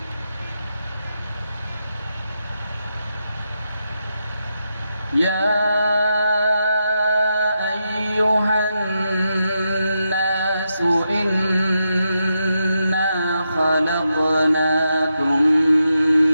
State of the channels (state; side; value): inverted; both; correlation -0.85